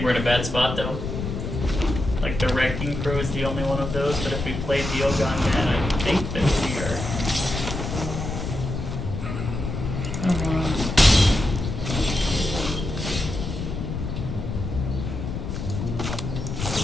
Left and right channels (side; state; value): left; noise; rumble, 4 dB below the sound